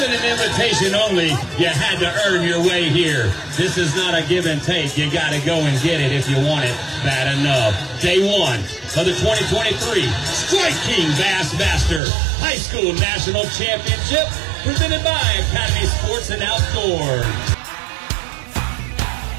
an invitation only. You had to earn your way here. This is not a give and take. You got to go and get it if you want it bad enough. Day one of the 2023 Strike King Bassmaster Highschool National Championship, presented by Academy Sports and Outdoors.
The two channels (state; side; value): drops out; left; at 12.0 s